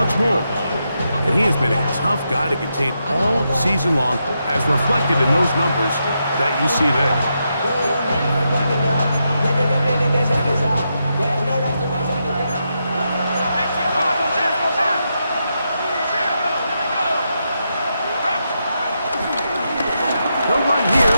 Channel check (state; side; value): inverted; both; correlation -0.84